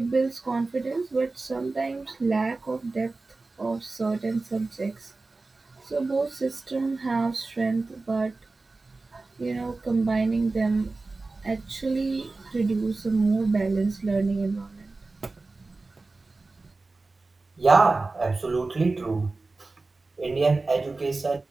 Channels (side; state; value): left; quieter; 3.5 dB